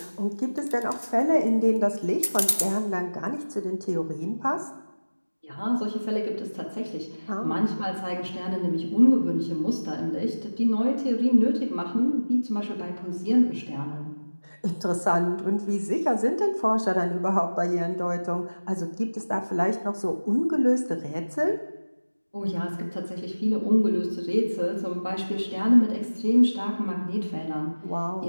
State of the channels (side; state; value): both; inverted; correlation -1.00